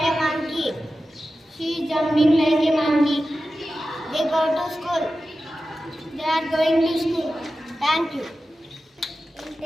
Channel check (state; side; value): normal; both; correlation 0.93